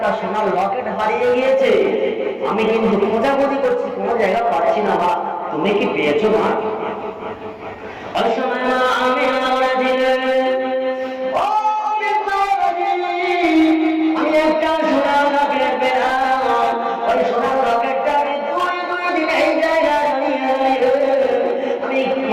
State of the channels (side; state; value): both; identical; correlation 1.00